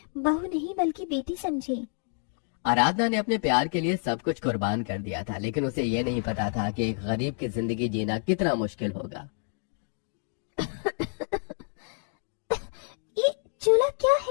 बहू नहीं बल्कि बेटी समझे। आराधना ने अपने प्यार के लिए सब कुछ कुर्बान कर दिया था, लेकिन उसे ये नहीं पता था कि एक गरीब की जिंदगी जीना कितना मुश्किल होगा। ये चूल्हा क्या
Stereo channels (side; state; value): right; silent; 59 dB below the other